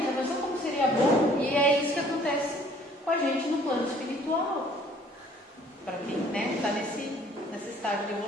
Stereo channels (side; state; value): both; normal; correlation 0.57